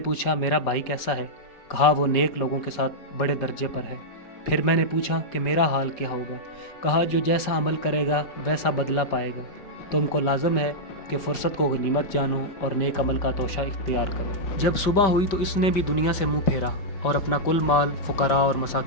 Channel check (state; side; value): late; right; 5.1 ms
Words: मेरा भाई कैसा है? कहा, वो नेक लोगों के साथ बड़े दर्जे पर है। फिर मैंने पूछा कि मेरा हाल क्या होगा? कहा, जो जैसा अमल करेगा वैसा बदला पाएगा। तुमको लाजम है कि फ़ुर्सत को गनीमत जानो और नेक अमल का तोशा इख्तियार करो। जब सुबह हुई तो इसने भी दुनिया से मुँह फेरा और अपना कुल माल फ़ुकरा और